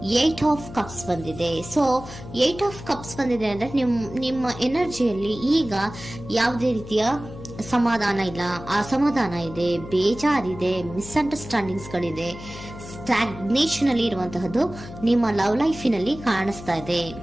8 ಆಫ್ ಕಪ್ಸ್ ಬಂದಿದೆ. ಸೊ 8 ಆಫ್ ಕಪ್ಸ್ ಬಂದಿದೆ ಅಂದ್ರೆ ನಿಮ್ಮ ಎನರ್ಜಿಯಲ್ಲಿ ಈಗ ಯಾವುದೇ ರೀತಿಯ ಸಮಾಧಾನ ಇಲ್ಲ, ಅಸಮಾಧಾನ ಇದೆ, ಬೇಜಾರಿದೆ, ಮಿಸ್ಅಂಡರ್ಸ್ಟ್ಯಾಂಡಿಂಗ್ಸ್ ಗಳಿದೆ, ಸ್ಟಾಗ್ನೇಷನ್ ಅಲ್ಲಿ ಇರುವಂತಹದ್ದು ನಿಮ್ಮ ಲವ್ ಲೈಫಿನಲ್ಲಿ ಕಾಣಿಸ್ತಾ ಇದೆ.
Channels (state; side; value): noise; left; hum, 13 dB below the sound